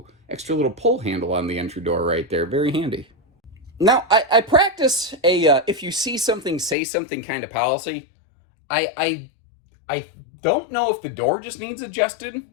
extra little pull handle on the entry door right there. Very handy. Now, I practice a if you see something, say something kind of policy. I don't know if the door just needs adjusted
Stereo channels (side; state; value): right; drops out; at 6.8 s